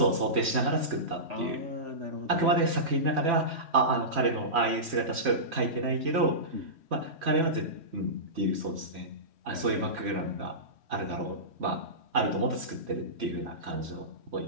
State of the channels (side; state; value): left; late; 3.1 ms